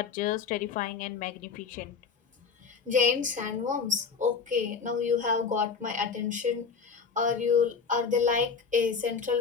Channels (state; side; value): quieter; right; 5.6 dB